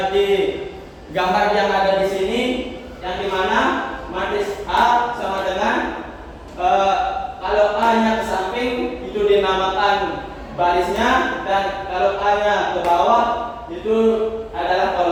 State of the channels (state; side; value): identical; both; correlation 1.00